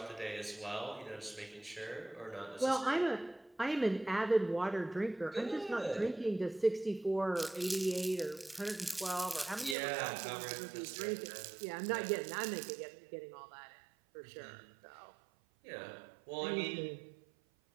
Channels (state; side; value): drops out; left; at 9.8 s